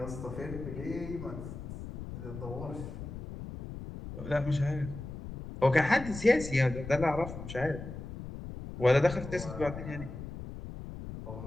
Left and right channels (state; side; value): noise; left; rumble, 9 dB below the sound